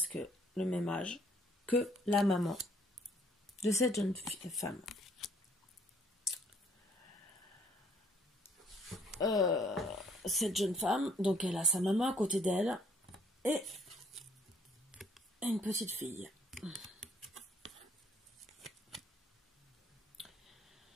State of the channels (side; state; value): both; normal; correlation 0.63